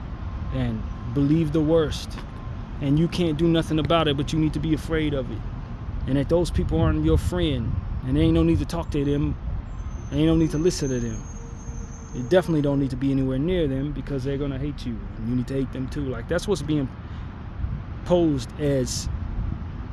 and believe the worst. And you can't do nothing about it, but you need to be afraid of it. And that those people aren't your friend, and there ain't no need to talk to them, and ain't no need to listen to them. You definitely don't need to be anywhere near them because they're gonna hate you, and you need to hate them too. Like, that's what's being posed as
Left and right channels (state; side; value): identical; both; correlation 1.00